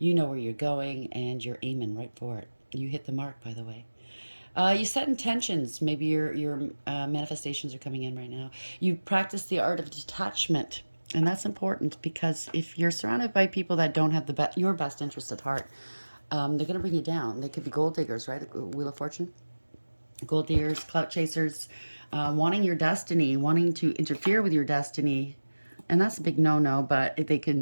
know where you're going, and you're aiming right for it. You hit the mark, by the way. You set intentions. Maybe your manifestations are coming in right now. You practice the art of detachment, and that's important because if you're surrounded by people that don't have your best interest at heart, they're going to bring you down. They could be gold diggers, right? The Wheel of Fortune. Gold diggers, clout chasers, wanting your destiny, wanting to interfere with your destiny, and that's a big no-no. But they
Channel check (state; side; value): inverted; both; correlation -1.00